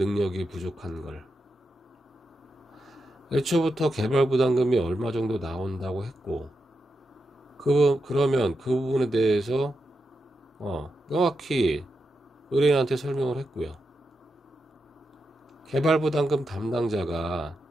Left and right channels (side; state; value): both; normal; correlation 0.87